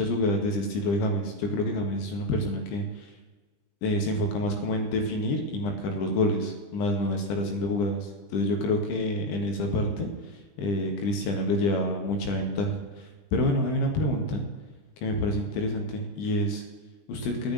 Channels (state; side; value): late; right; 20 ms